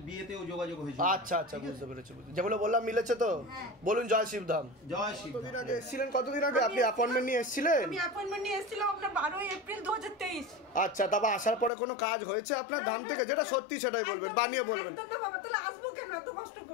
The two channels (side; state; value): right; drops out; at 11.7 s